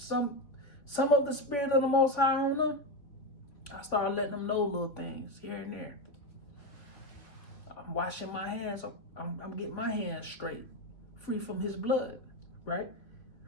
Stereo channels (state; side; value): late; right; 3.1 ms